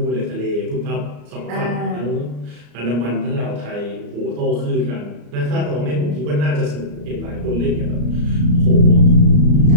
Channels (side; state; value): left; late; 34 ms